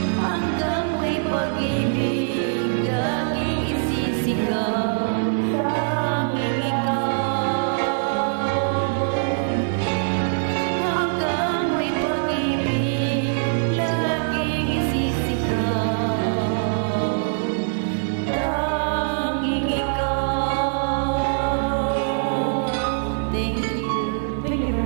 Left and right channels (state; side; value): silent; left; 63 dB below the other